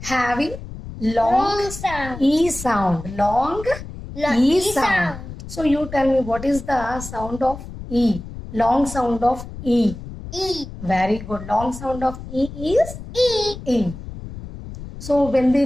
long Long sound. E sound. Long E sound. So you tell me what is the sound of E? Long sound of E. E. Very good. Long sound of E is E. E. So when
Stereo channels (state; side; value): noise; left; rumble, 12 dB below the sound